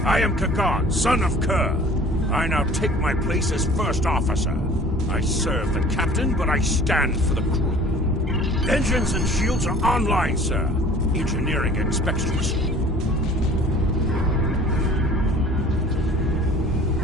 I am Kagan, son of Kerr. I now take my place as first officer. I serve the captain, but I stand for the crew. Engines and shields are online, sir. Engineering expects to receive.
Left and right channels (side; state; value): both; normal; correlation 0.48